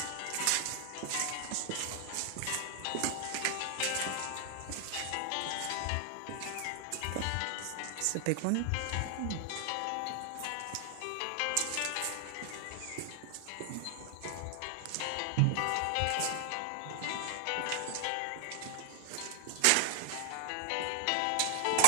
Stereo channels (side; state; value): both; different; correlation 0.00